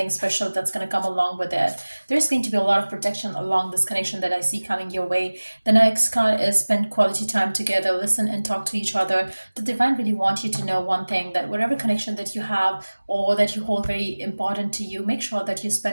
special that's going to come along with it. There's going to be a lot of protection along this connection that I see coming your way. The next card is spend quality time together, listen and talk to each other. The divine really want you to know one thing, that whatever connection that you have or that you hold very important to you, make sure that you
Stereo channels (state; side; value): inverted; both; correlation -1.00